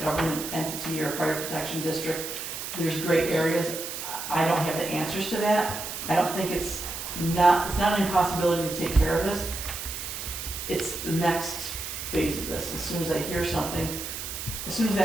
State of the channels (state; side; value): noise; right; hiss, 7 dB below the sound